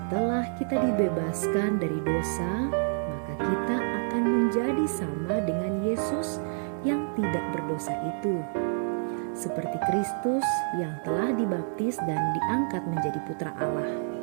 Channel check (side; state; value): left; silent; 59 dB below the other